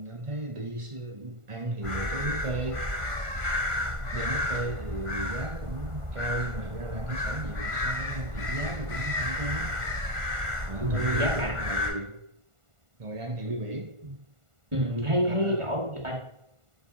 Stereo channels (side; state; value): left; late; 1.5 ms